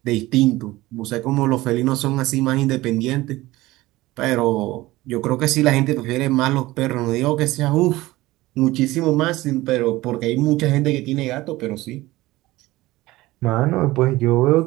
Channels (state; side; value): quieter; left; 18.5 dB